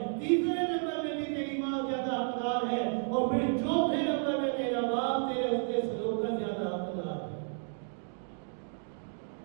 تیسرے نمبر میں بھی تیری ماں زیادہ حقدار ہے، اور پھر چوتھے نمبر میں تیرا باپ تیرے حسن سلوک کا زیادہ حقدار ہے۔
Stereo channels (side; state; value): left; silent; 56 dB below the other